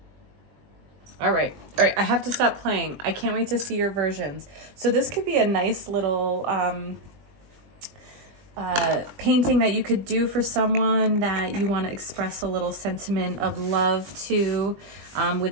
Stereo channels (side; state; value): left; late; 20 ms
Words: All right, I have to stop playing. I can't wait to see your versions. So this could be a nice little painting that you could do for someone that you want to express a little sentiment of love to,